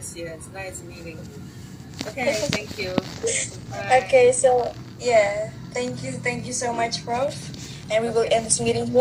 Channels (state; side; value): identical; both; correlation 1.00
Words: yes. Nice meeting you. Okay, thank you. Bye. Okay, so yeah, thank you so much, Prof. And we will Okay. end this meeting